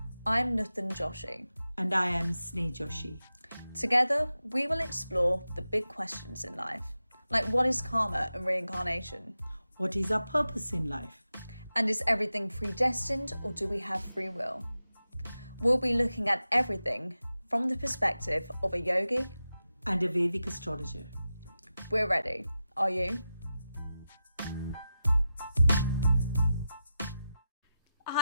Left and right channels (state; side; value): inverted; both; correlation -0.92